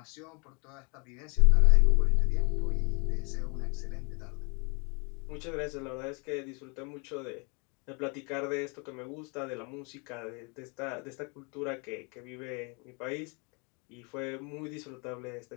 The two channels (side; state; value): right; quieter; 32.7 dB